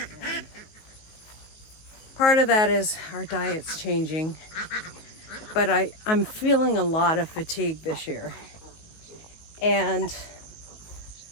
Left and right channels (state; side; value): late; right; 19 ms